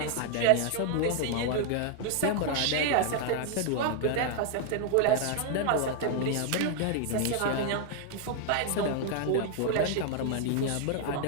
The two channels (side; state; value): both; different; correlation 0.00